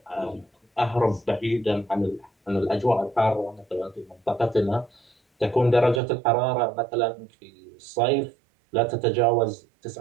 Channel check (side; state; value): left; drops out; at 6.0 s